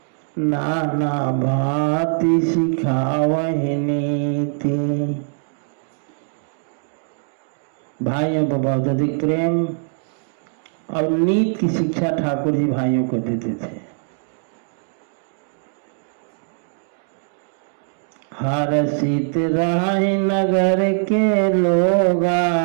नाना भांति सिखावहि नीति। भाइयों पर बहुत अधिक प्रेम और नीति की शिक्षा ठाकुर जी भाइयों को देते थे। हर्षित रहि नगर के लोगा,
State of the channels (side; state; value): left; silent; 62 dB below the other